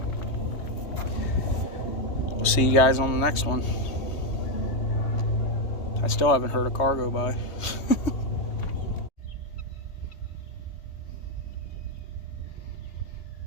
We'll see you guys on the next one. I still haven't heard a car go by.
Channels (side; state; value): right; late; 3.2 ms